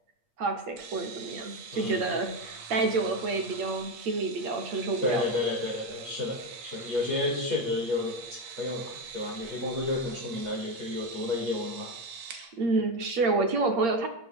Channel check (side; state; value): left; late; 8.5 ms